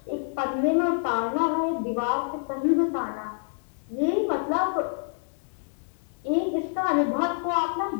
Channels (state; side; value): silent; right; digital silence